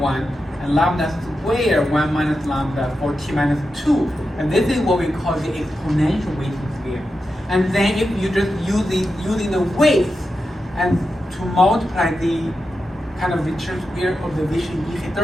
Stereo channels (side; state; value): both; normal; correlation 0.89